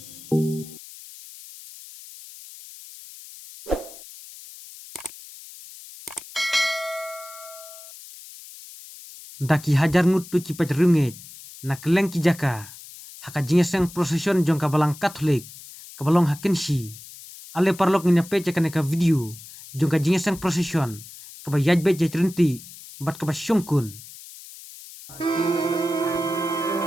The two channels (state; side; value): noise; left; hiss, 17 dB below the sound